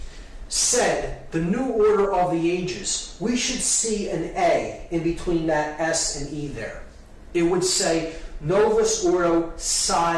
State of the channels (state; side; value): identical; both; correlation 1.00